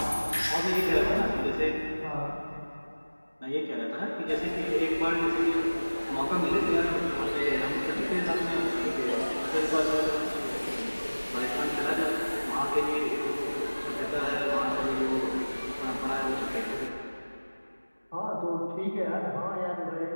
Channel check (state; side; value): inverted; both; correlation -1.00